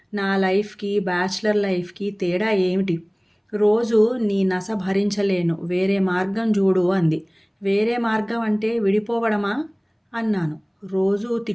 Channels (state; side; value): identical; both; correlation 1.00